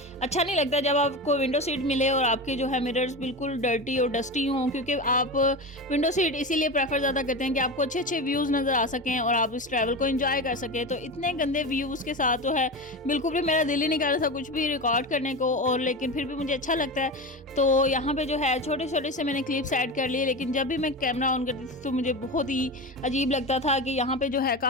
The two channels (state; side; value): normal; both; correlation 0.24